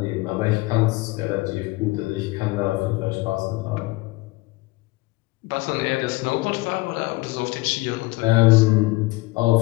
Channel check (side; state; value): right; quieter; 22.2 dB